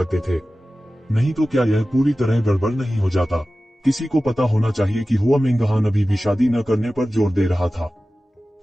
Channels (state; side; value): normal; both; correlation 0.96